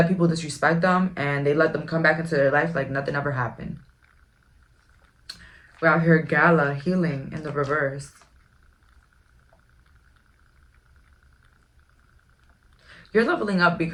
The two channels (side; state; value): both; identical; correlation 1.00